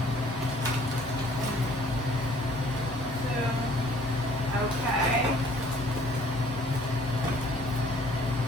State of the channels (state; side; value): normal; both; correlation 0.57